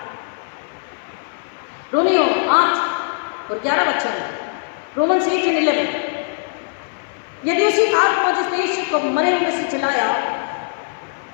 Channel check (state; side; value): silent; right; 55 dB below the other